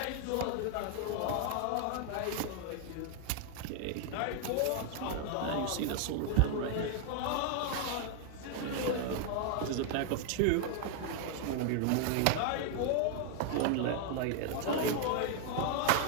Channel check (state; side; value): different; both; correlation 0.00